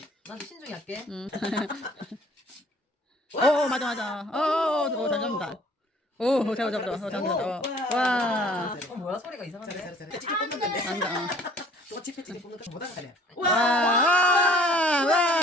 난 신중히 할게. 맞아. 잘 잡는다. 오, 잡는다. 와. 뭐야 소리가 이상한데? 잘해. 찌찌 뽑는 건데. 잘한다. 또 찌찌 뽑는 거 못하는 거네. 와.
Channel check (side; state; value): both; normal; correlation 0.55